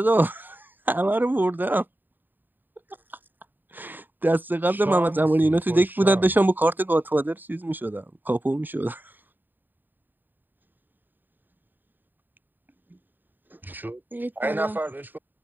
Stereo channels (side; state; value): left; late; 0.091 ms